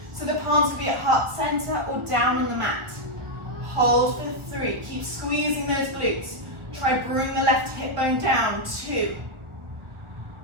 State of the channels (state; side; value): late; left; 1.4 ms